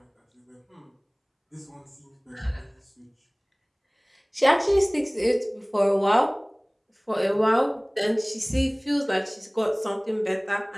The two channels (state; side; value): identical; both; correlation 1.00